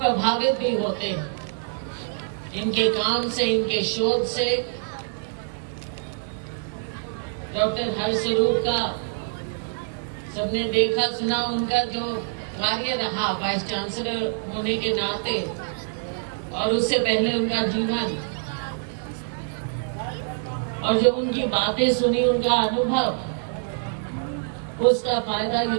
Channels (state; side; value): silent; left; digital silence